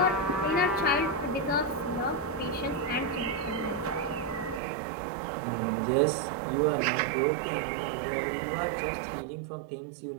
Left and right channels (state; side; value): drops out; left; at 4.6 s